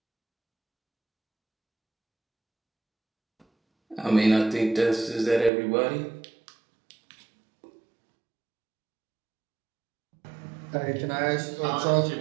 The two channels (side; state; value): left; drops out; at 5.5 s